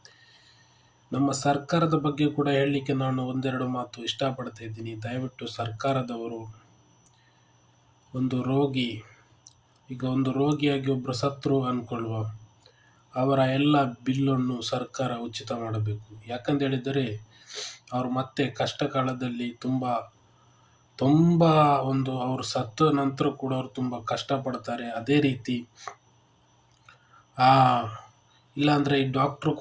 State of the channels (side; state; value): both; identical; correlation 1.00